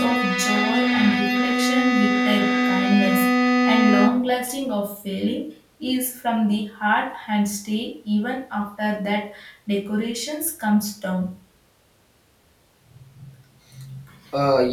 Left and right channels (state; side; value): identical; both; correlation 1.00